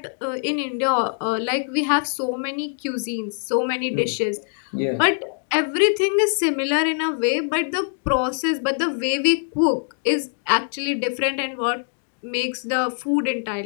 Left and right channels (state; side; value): silent; right; 58 dB below the other